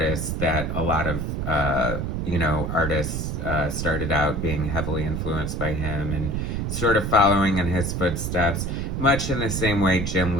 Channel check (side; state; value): right; noise; rumble, 2 dB below the sound